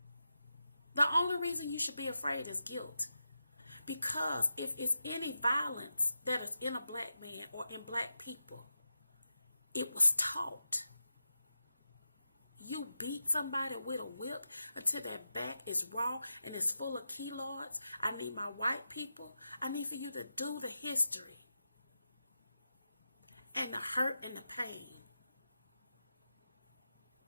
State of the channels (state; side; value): inverted; both; correlation -0.89